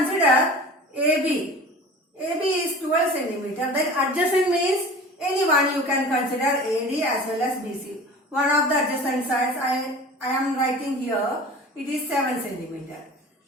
AB. AB is 12 centimeter. Then adjacent means anyone you can consider AD as well as BC. One of the adjacent sides I am writing here. It is 7 centimeter.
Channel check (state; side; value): normal; both; correlation 0.39